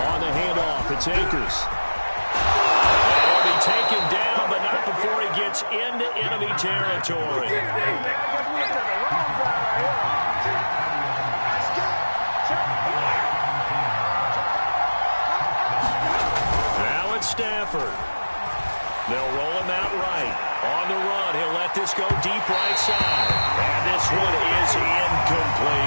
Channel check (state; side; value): inverted; both; correlation -1.00